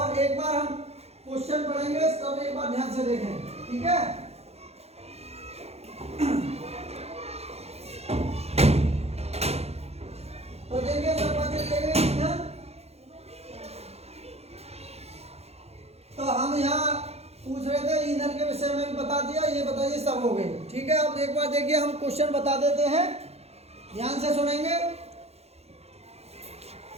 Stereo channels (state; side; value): late; left; 0.30 ms